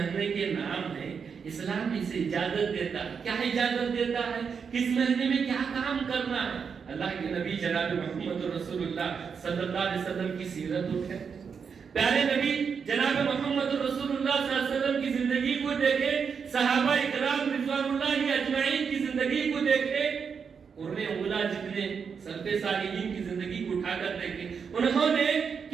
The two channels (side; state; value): left; quieter; 6.2 dB